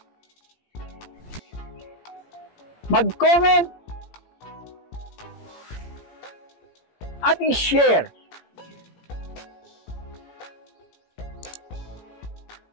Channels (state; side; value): late; right; 17 ms